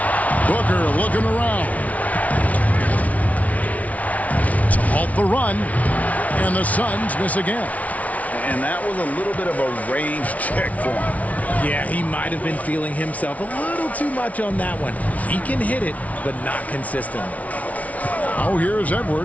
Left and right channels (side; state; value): right; late; 0.069 ms